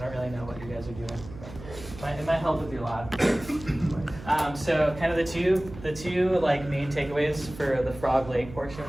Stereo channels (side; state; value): right; noise; hum, 15 dB below the sound